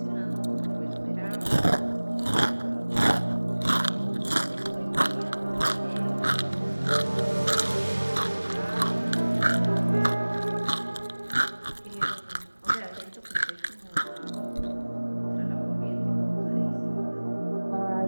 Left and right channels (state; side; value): inverted; both; correlation -1.00